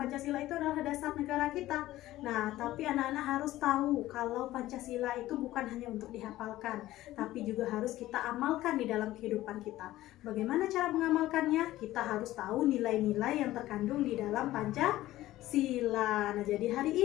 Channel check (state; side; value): quieter; right; 15.6 dB